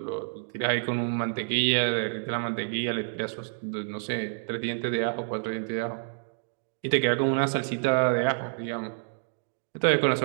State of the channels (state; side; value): silent; left; digital silence